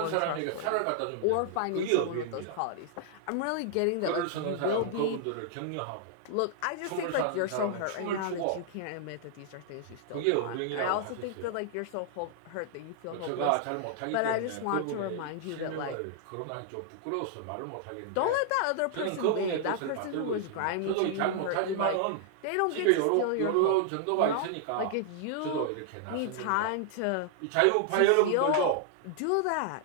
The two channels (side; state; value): both; different; correlation -0.01